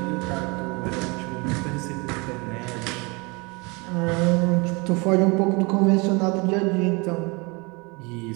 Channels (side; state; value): left; quieter; 27.9 dB